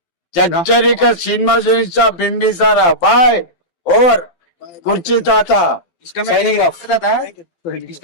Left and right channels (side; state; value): right; late; 12 ms